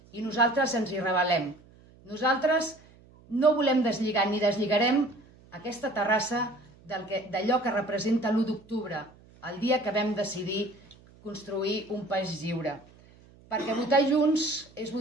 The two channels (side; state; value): right; noise; hum, 26 dB below the sound